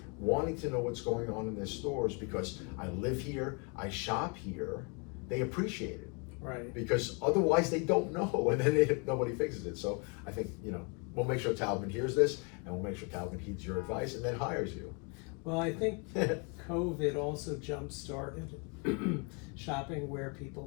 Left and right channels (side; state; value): right; quieter; 34.6 dB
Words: wanting to know what's going on in their stores, because I live here, I shop here, they appreciate it. Right. Because otherwise they don't know, and then nobody fixes it. So I think, you know, we'll make sure Taubman hears this, and we'll make sure Taubman heeds your advice and then hires you. Well, I think COVID also jump-started shopping where